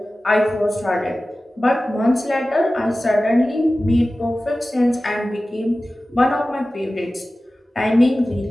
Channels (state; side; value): normal; both; correlation 0.96